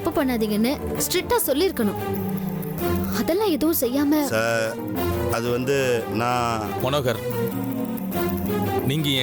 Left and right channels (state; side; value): identical; both; correlation 1.00